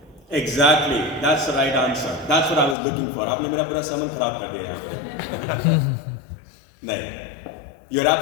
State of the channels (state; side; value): drops out; right; at 2.8 s